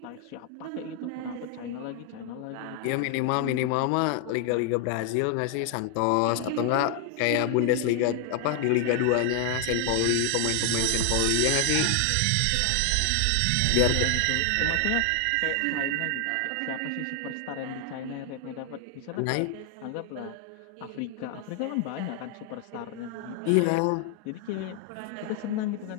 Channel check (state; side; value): different; both; correlation 0.00